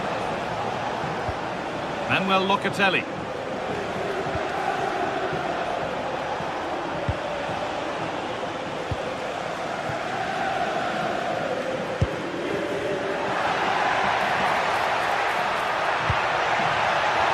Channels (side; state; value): both; identical; correlation 1.00